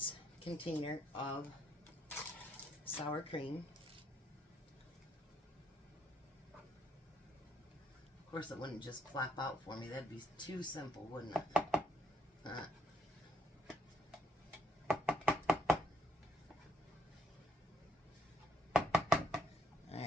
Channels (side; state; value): both; normal; correlation 0.71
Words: container of sour cream. Of course, it wouldn't just plop out for me. That'd be too simple, wouldn't it?